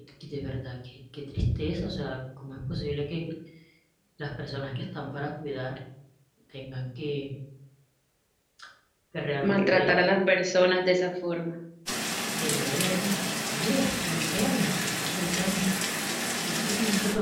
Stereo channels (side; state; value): both; identical; correlation 1.00